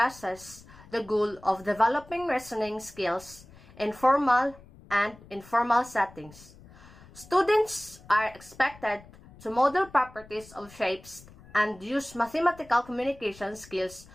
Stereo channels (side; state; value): left; noise; rumble, 22 dB below the sound